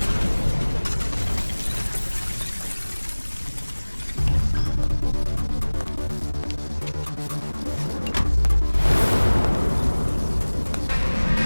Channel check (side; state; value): both; inverted; correlation -1.00